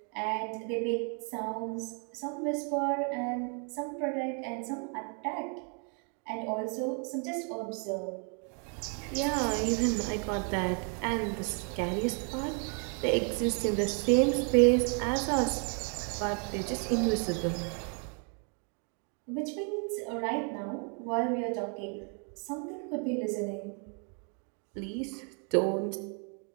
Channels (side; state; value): left; quieter; 39.8 dB